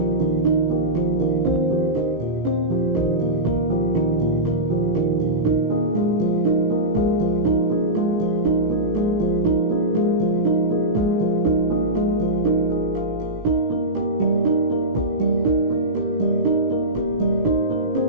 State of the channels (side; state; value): left; late; 17 ms